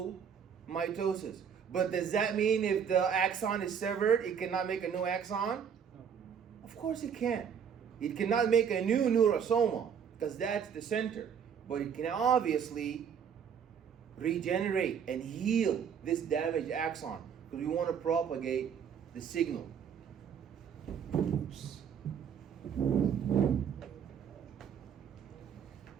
mitosis. But does that mean if the axon is severed, it cannot make a new axon? Of course it can. It cannot make a new neurosoma because that's the center. But it can obviously regenerate and heal this damaged axon because we want to propagate the signal. Oops.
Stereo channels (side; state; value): left; quieter; 7.6 dB